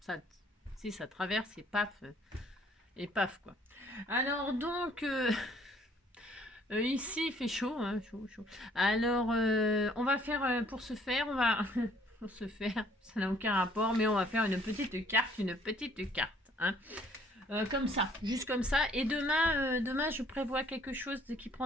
ça, si ça traverse et paf quoi. Alors donc, ici il fait chaud, hein, chaud, chaud. Alors on va faire, pour ce faire, on va, pour se faire, ça n'a aucun rapport, mais on va faire une petite carte, hein. Comme ça, juste comme ça. Et demain je prévois quelque chose qui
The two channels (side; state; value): both; normal; correlation 0.60